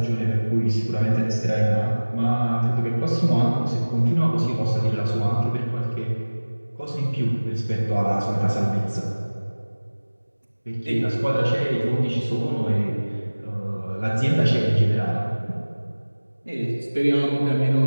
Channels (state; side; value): inverted; both; correlation -1.00